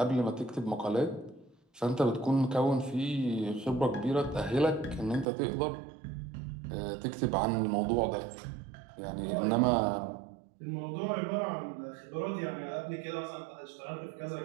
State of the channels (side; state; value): left; drops out; at 5.2 s